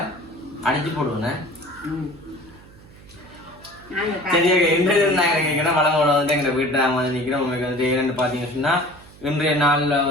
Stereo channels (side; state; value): right; noise; hum, 22 dB below the sound